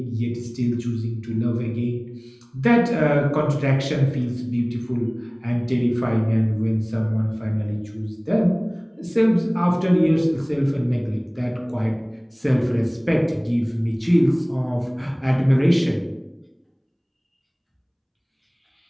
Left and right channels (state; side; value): identical; both; correlation 1.00